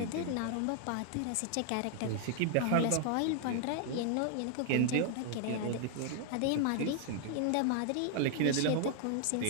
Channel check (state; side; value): different; both; correlation 0.00